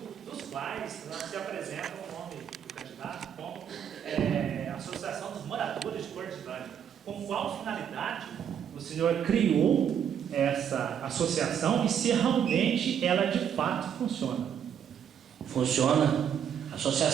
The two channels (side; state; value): left; quieter; 8.6 dB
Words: quais se apresenta o nome do candidato como Associação dos Moradores de Cordilândia. Com qual finalidade o senhor criou essa associação e se realmente ela de fato funciona? Funciona. A